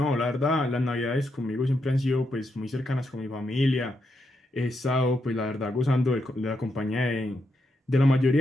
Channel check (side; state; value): both; normal; correlation 0.82